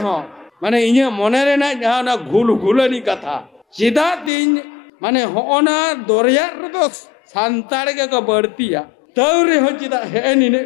हो माने इन्हें मोने रे ना जहाँ ना घुलनी कथा चिदा तीन माने होना दोरिया तो सांताड़ के का बढ़तिया तौरे हो चिदा है नी ने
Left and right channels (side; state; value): right; drops out; at 4.3 s